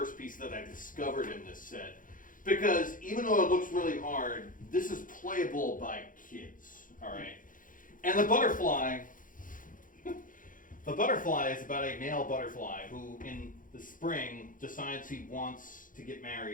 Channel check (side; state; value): right; late; 0.39 ms